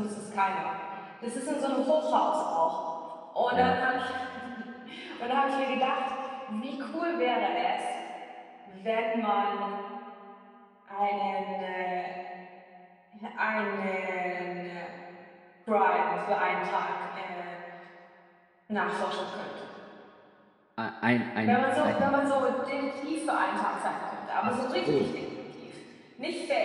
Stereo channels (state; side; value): identical; both; correlation 1.00